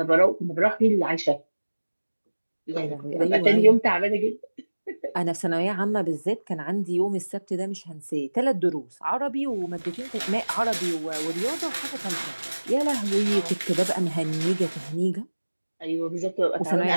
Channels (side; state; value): both; inverted; correlation -1.00